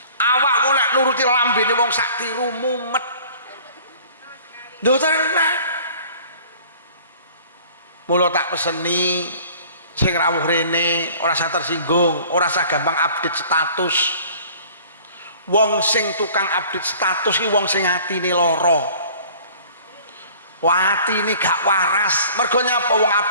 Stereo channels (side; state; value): both; inverted; correlation -0.49